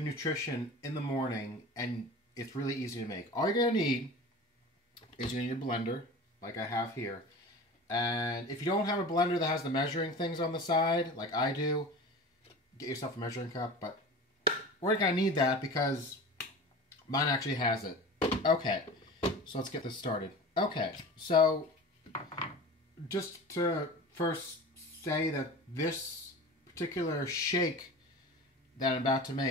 nutrition in the morning, and it's really easy to make. All you're going to need is you need a blender, like I have here. And if you don't have a blender that has the measuring things on the side, like I do, get yourself a measuring cup. But we're going to need that because mine actually has it. Okay, so let's get this started. Okay, so just to first say that this particular shake that I'm about to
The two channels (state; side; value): normal; both; correlation 0.35